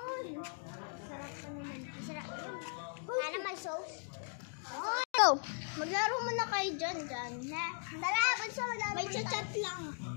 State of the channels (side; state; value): right; silent; 52 dB below the other